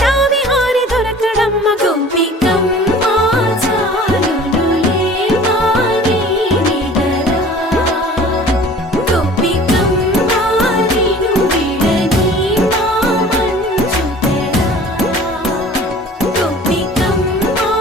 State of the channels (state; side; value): normal; both; correlation 0.46